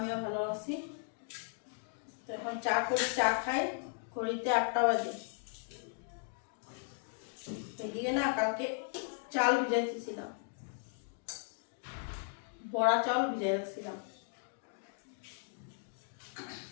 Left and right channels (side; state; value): right; silent; 53 dB below the other